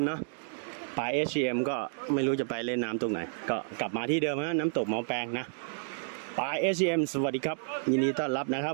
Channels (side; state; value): left; silent; digital silence